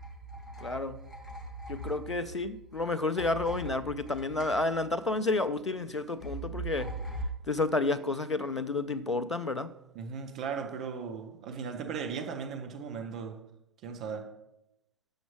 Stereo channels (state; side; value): normal; both; correlation 0.34